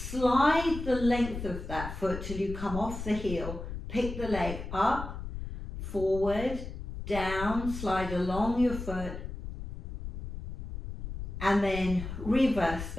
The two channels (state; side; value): noise; left; rumble, 8 dB below the sound